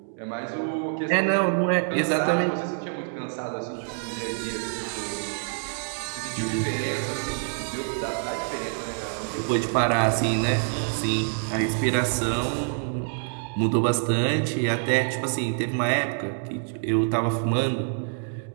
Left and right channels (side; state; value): left; silent; 61 dB below the other